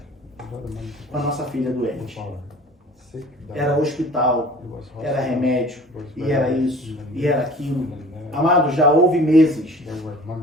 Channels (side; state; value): both; normal; correlation 0.45